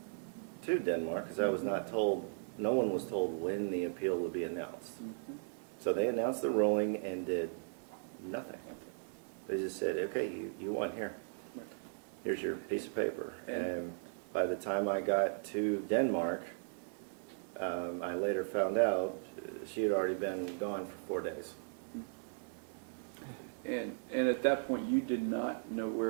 to Denmark because I was not told. No one was told when the appeal would be announced. So they announced the ruling and did nothing. They just said, okay, you won here. Right. Here's your piece of paper. And by the time I got to Denmark, I later found out she had already been gone for 4 days. And at that point, you did not know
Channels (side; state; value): left; silent; digital silence